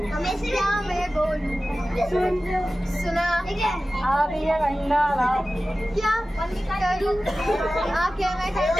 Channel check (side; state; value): both; normal; correlation 0.96